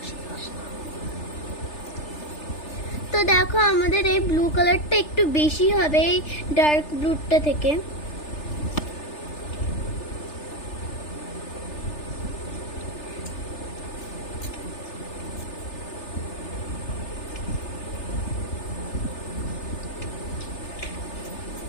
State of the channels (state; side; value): late; right; 3.3 ms